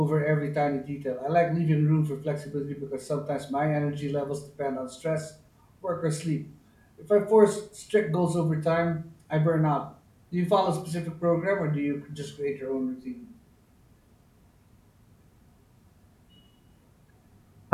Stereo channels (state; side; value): identical; both; correlation 1.00